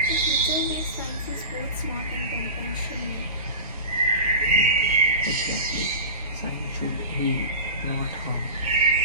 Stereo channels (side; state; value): both; inverted; correlation -0.31